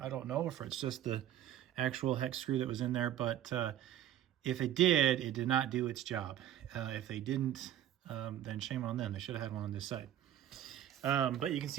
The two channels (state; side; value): quieter; left; 11.7 dB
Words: I don't know if it's just the actual hex screw that was in there, but if it did not do its job. If they didn't, then shame on them. They should have had one on this side. But you can